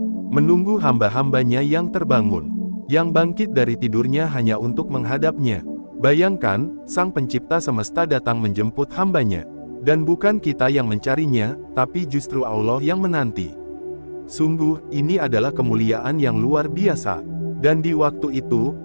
menunggu hamba-hambanya yang terbangun, yang bangkit dari tidurnya hanya untuk menghadapnya. Bayangkan, Sang Pencipta semesta datang menjemput hambanya. Dan bukan kita yang mencarinya, tapi justru Allah yang menanti. Sungguh, ini adalah kemuliaan yang luar biasa. Dan di waktu itu,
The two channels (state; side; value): inverted; both; correlation -1.00